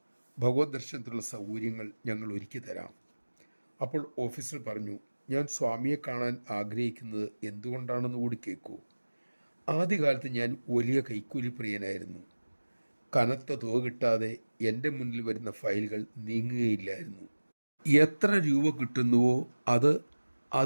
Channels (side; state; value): both; inverted; correlation -1.00